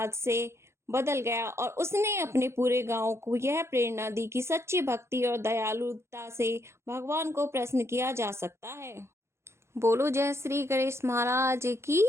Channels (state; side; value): late; left; 0.13 ms